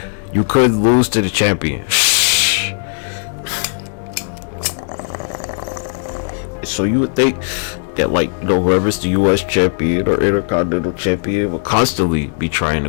lose to the champion. So you would think that, like, you know, whoever's the US champion or Intercontinental champion will constantly be trying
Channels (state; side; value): silent; right; digital silence